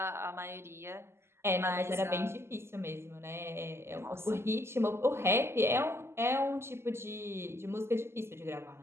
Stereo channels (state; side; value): late; left; 0.12 ms